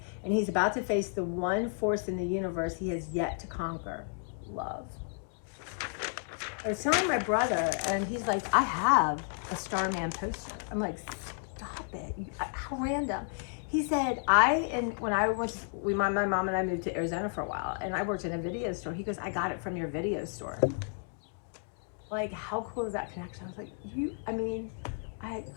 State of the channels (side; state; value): right; silent; 56 dB below the other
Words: And he's about to face the one force in the universe he has yet to conquer. Love. I was telling my brother, and he's like, I have a Starman poster. I'm like, stop it. How random. He said, when I went to, my mom and I moved to Arizona for a while, and I worked in a video store. He goes, I got it from your video store. Like, how cool is that connection? I was like, I